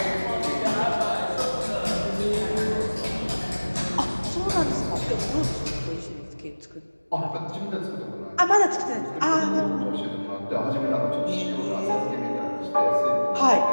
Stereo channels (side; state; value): both; inverted; correlation -1.00